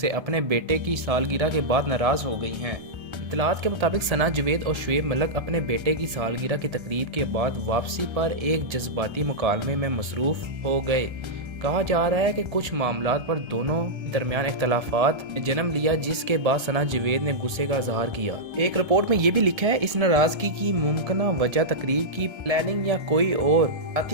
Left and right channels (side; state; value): left; late; 1.3 ms